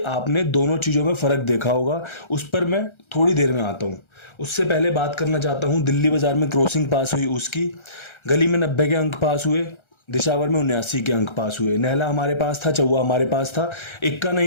आपने दोनों चीज़ों में फ़र्क देखा होगा, उस पर मैं थोड़ी देर में आता हूँ। उससे पहले बात करना चाहता हूँ दिल्ली बाजार में क्रॉसिंग पास हुई उसकी। गली में 90 के अंक पास हुए, दिशावर में 79 के अंक पास हुए। नहला हमारे पास था, चौवा हमारे पास था, इक्का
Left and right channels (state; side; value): late; right; 1.3 ms